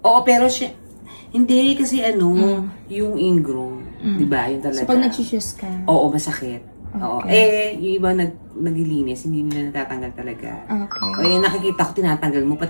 Oo, pero hindi kasi yung ingrown. Di ba? Yung talaga. So, pag nag-choose ka. Oo, masakit. Oo. Okay. Yung iba naglilinis, hindi nila natatanggal talaga. Okay. Nakikita ko tinatanggal mo,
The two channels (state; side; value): inverted; both; correlation -1.00